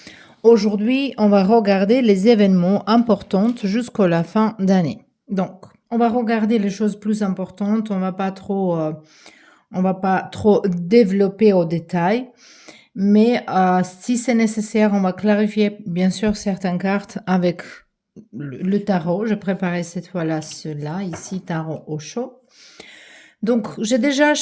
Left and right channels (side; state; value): both; identical; correlation 1.00